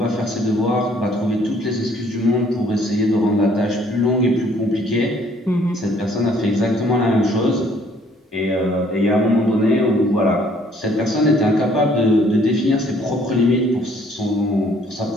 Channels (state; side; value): normal; both; correlation 0.61